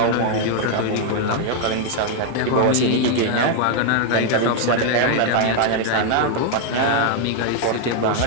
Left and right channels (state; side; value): different; both; correlation 0.00